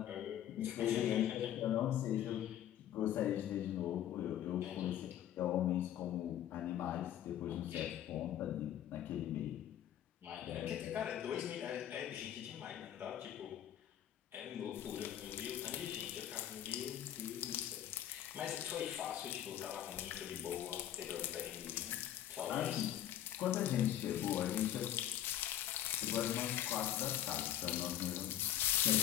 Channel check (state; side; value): quieter; right; 11.5 dB